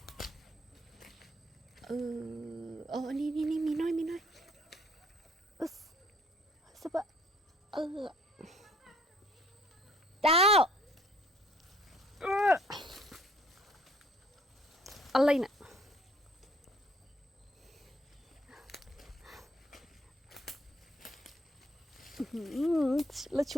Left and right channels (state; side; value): normal; both; correlation 0.61